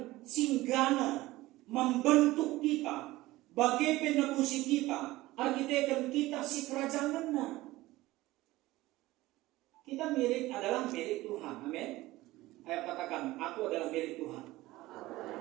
singgana membentuk kita bagi penebusi kita, arkitektur kita si kerajaan. Kita adalah milik Tuhan. Amin. Ayo katakan, aku adalah milik Tuhan.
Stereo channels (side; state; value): left; quieter; 18.2 dB